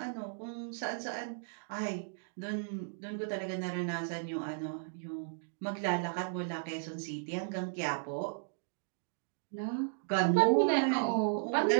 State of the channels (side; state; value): left; silent; digital silence